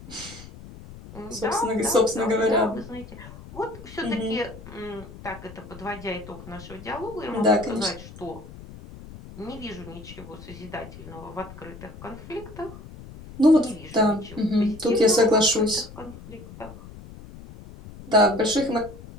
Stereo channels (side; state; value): left; noise; rumble, 16 dB below the sound